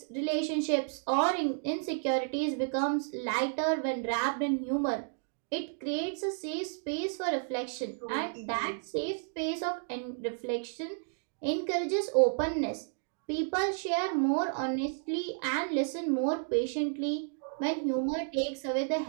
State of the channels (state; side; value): silent; left; digital silence